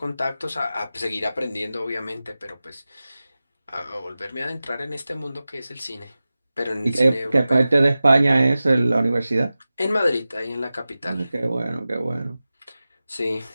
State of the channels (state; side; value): inverted; both; correlation -0.95